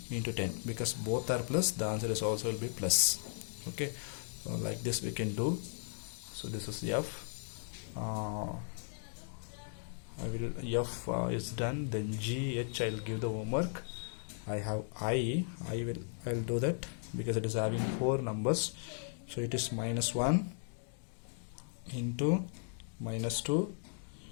into 10, because both are plus, the answer is also will be plus. Okay, so like this we can do. So this is F. F is done. Then G, H, I'll give the homework. I have I'll do that because it is having 4 numbers. So it is -1 into -2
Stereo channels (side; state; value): right; silent; digital silence